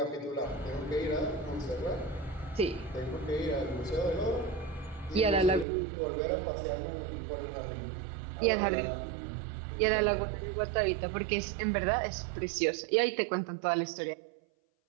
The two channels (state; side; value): drops out; left; at 5.7 s